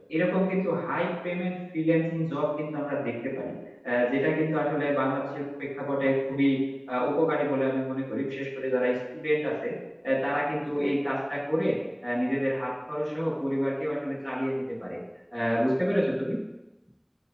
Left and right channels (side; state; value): both; identical; correlation 1.00